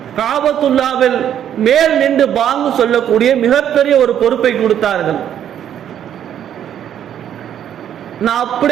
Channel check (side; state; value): left; quieter; 10.0 dB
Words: காபத்துல்லாவில் மேல் நின்று பாங்கு சொல்லக்கூடிய மிகப்பெரிய ஒரு பொறுப்பை கொடுத்தார்கள். நான்